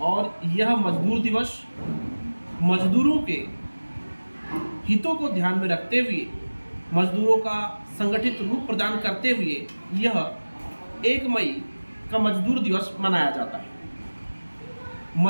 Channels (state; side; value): inverted; both; correlation -1.00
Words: और यह मजदूर दिवस मजदूरों के हितों को ध्यान में रखते हुए, मजदूरों का संगठित रूप प्रदान करते हुए यह 1 मई का मजदूर दिवस मनाया जाता है।